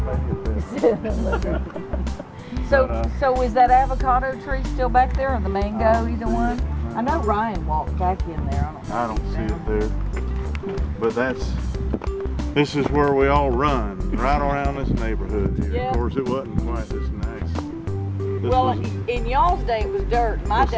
maybe it's So is that avocado tree still back there, or the mango, either one? I know Ryan walked back in there. I don't see it there. But this is where we all run, right around this neighborhood here. Yeah. Of course, it wasn't quite this nice. In y'all's day it was dirt. My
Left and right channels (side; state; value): both; identical; correlation 1.00